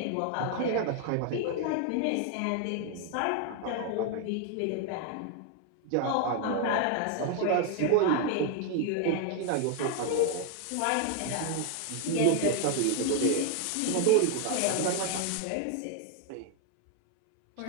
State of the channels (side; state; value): both; different; correlation 0.00